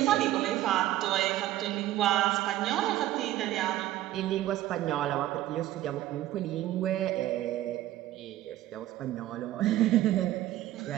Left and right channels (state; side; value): quieter; left; 14.4 dB